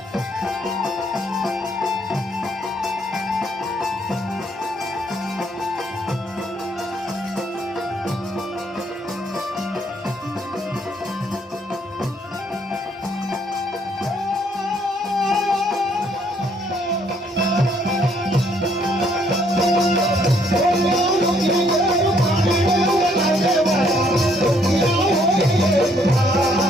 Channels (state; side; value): normal; both; correlation 0.67